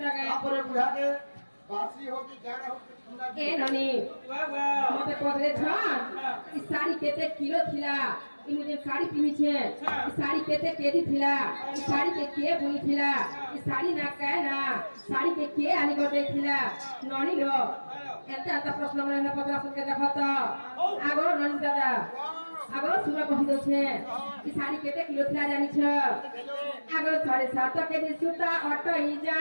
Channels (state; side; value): inverted; both; correlation -1.00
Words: ए ननी मते पदरे छन ई साड़ी केते किलो थिला ई मुझे साड़ी पिनी छे ई साड़ी केते केदी थिला ई साड़ी के बुनी थिला ई साड़ी ना काहे ना साड़ी के आनी गदे थिला ननी लो एते आता प्रश्न मने पदरा सुन के देखत आगो ननी दादा आगो सुना कहि दो छे ई साड़ी केते किलो थिला जानी छ आगो 7.5 केजी सुता अटई